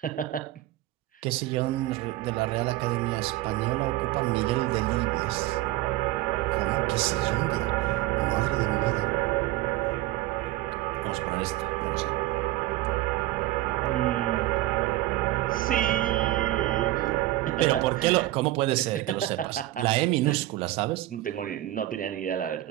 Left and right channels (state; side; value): quieter; left; 16.3 dB